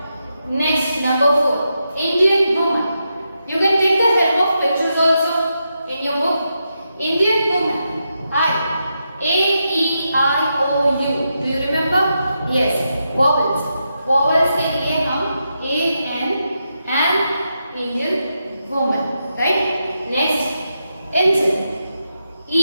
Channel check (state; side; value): inverted; both; correlation -0.85